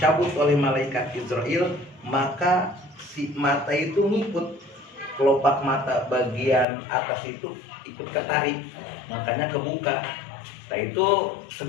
oleh malaikat Israel, maka si mata itu ngikut. Kelopak mata bagian atas itu ikut ketarik, makanya kebuka. Nah itu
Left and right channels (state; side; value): drops out; right; at 6.7 s